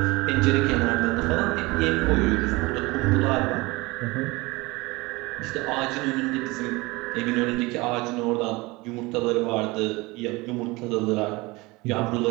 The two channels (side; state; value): left; quieter; 23.0 dB